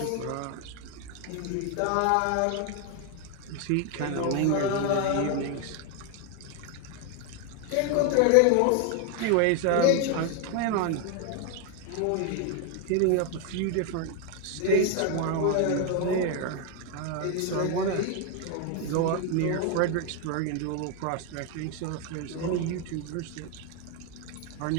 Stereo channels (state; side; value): different; both; correlation 0.01